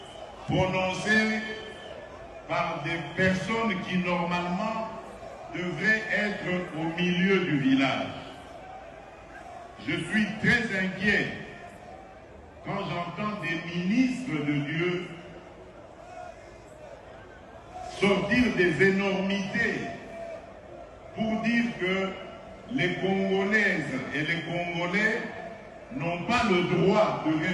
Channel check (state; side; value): identical; both; correlation 1.00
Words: prononcés par des personnes qui normalement devraient être au milieu du village. Je suis très inquiet quand j'entends des ministres de Dieu sortir des énormités pour dire que les Congolaises et les Congolais n'ont pas le droit de